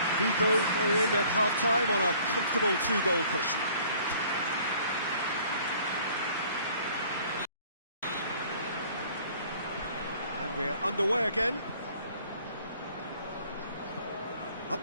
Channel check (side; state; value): both; inverted; correlation -0.55